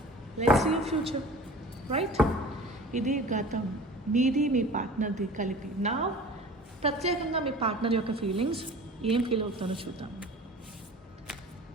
Let's see future, right? ఇది గతం, మీది మీ పార్ట్నర్ది కలిపి. నా ప్రత్యేకంగా మీ పార్ట్నర్ యొక్క ఫీలింగ్స్ ఏం ఫీల్ అవుతానో చూద్దాం.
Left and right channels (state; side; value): normal; both; correlation 0.41